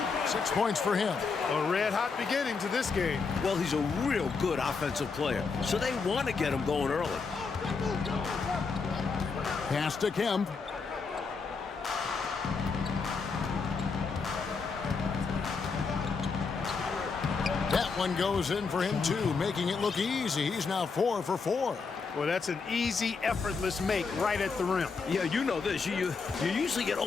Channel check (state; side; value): quieter; right; 4.9 dB